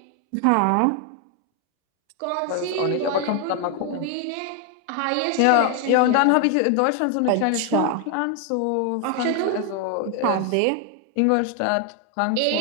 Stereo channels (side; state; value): both; different; correlation 0.01